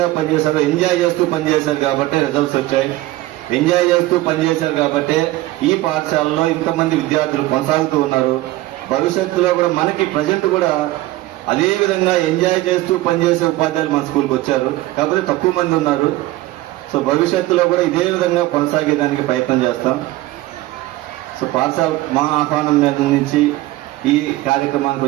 పనిచేశారు, ఎంజాయ్ చేస్తూ పనిచేశారు కాబట్టి రిజల్ట్స్ వచ్చాయి. ఎంజాయ్ చేస్తూ పనిచేశారు కాబట్టి ఈ పాఠశాలలో ఇంతమంది విద్యార్థులు కొనసాగుతూ ఉన్నారు. భవిష్యత్తులో కూడా మనకి ప్రజెంట్ కూడా అదే విధంగా ఎంజాయ్ చేస్తూ పనిచేసే ఉపాధ్యాయులు మన స్కూల్కి వచ్చారు, కాకపోతే తక్కువ మంది ఉన్నారు. సో భవిష్యత్తులో కూడా ఇదే విధంగా కొనసాగేదానికి ప్రయత్నం చేస్తాం. సో పాఠశాల మా ఆహ్వానం మీద నుంచి ఈ కార్యక్రమానికి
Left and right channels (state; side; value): quieter; left; 17.6 dB